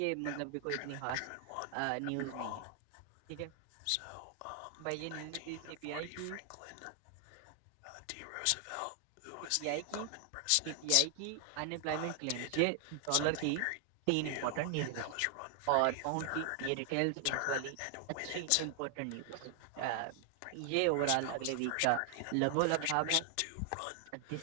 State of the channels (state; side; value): different; both; correlation 0.00